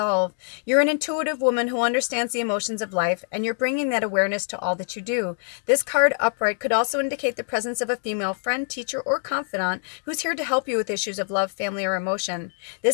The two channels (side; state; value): right; silent; digital silence